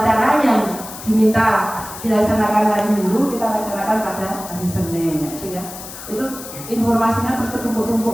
yang diminta dilaksanakan hari Minggu kita laksanakan pada hari Senin, ya. Itu informasinya terus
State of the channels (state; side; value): noise; left; hiss, 12 dB below the sound